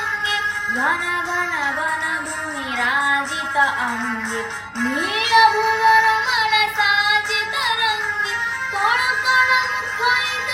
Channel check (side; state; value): both; identical; correlation 1.00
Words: घन घन वन भूमि राजित अंगे नीलभूधरमण साजित रंगे कण कण मुखरित